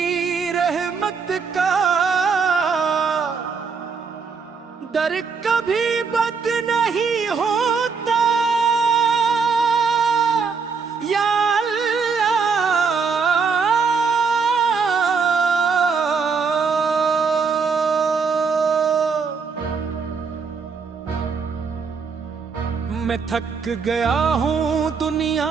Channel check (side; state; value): left; quieter; 5.4 dB